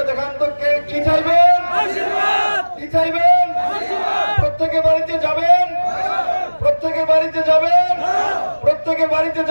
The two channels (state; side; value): inverted; both; correlation -1.00